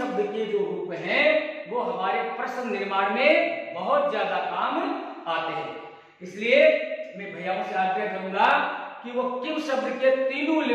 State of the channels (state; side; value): identical; both; correlation 1.00